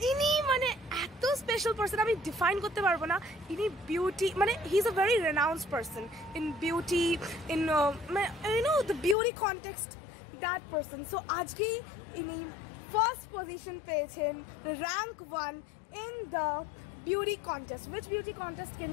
ইনি মানে এত স্পেশাল পারসন আমি ডিফাইন করতে পারবো না ইনি বিউটি মানে he is a very renounced person in beauty in you know the beauty context that person so আজকে ইনি ফার্স্ট পজিশন পেয়েছেন rank 1 in the beauty contest which beauty contest can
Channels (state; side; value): drops out; right; at 9.2 s